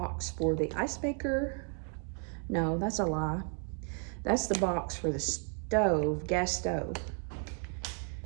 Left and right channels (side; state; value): left; quieter; 38.8 dB